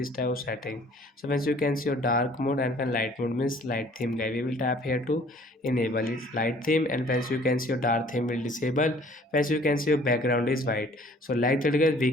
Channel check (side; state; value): both; normal; correlation 0.55